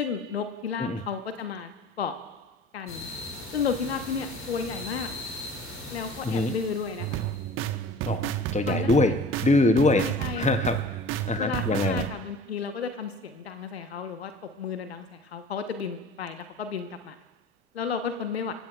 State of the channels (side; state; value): both; normal; correlation 0.43